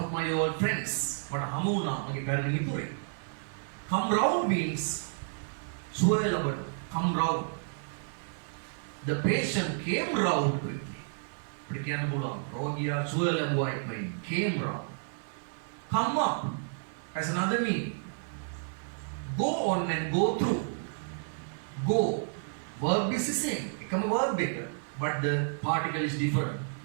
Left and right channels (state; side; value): silent; left; digital silence